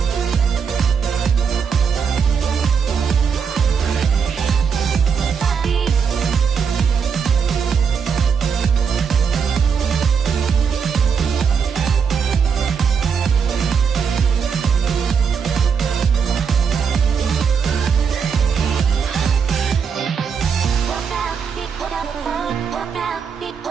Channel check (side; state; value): left; quieter; 6.4 dB